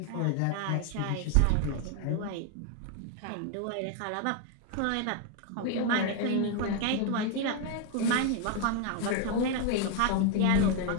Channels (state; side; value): different; both; correlation 0.01